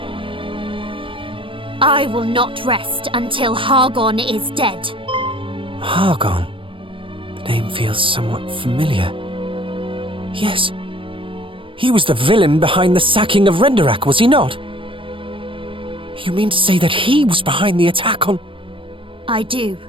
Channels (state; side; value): late; left; 0.25 ms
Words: I will not rest until Hargon is dead. Hargon? The name feels somewhat familiar. Yes. He was the villain behind the sacking of Renderak, was he not? You mean to say that he was behind the attack on... I do.